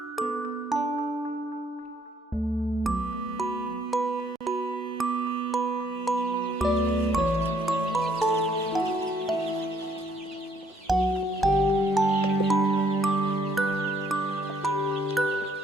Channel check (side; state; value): both; normal; correlation 0.66